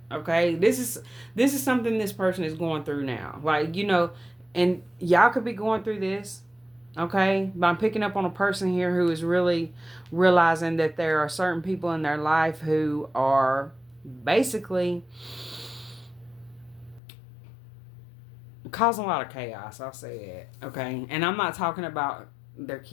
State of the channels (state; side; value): drops out; right; at 17.0 s